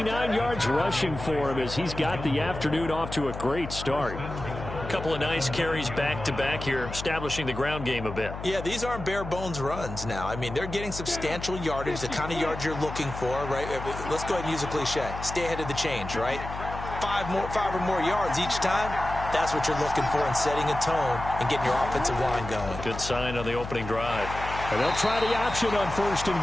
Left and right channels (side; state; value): left; noise; hum, 9 dB below the sound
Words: yards rushing for him as he's got the afternoon off to a great start. A couple of nice carries back-to-back here, establishing the ground game a bit. Yeah, these aren't bare-bones runs now. I mean, they're getting substantial yardage, the kind of yards you're looking for, right? Let's go ahead and use a cliche. Stay ahead of the change, right? 5 or more yards each time. That's what you're looking for in setting a tone and getting your offensive line going. Good sign on the opening drive. And they'll try the option on 1st and